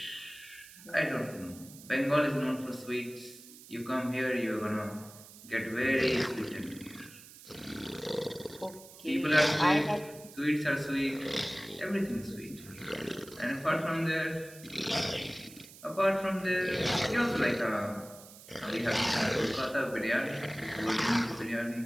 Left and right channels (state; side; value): noise; right; hiss, 19 dB below the sound